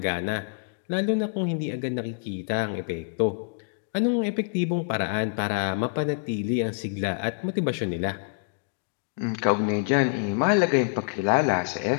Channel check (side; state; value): right; silent; digital silence